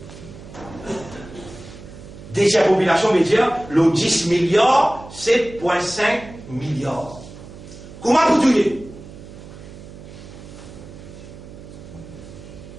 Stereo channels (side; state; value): right; noise; hum, 16 dB below the sound